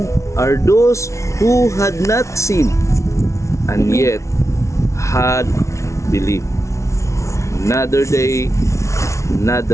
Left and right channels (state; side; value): late; right; 0.14 ms